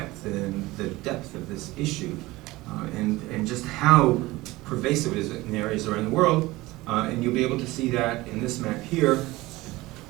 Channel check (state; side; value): quieter; left; 19.7 dB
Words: and the depth of this issue, and just how pervasive it is in areas around the world. And you'll be able to see that in this map here.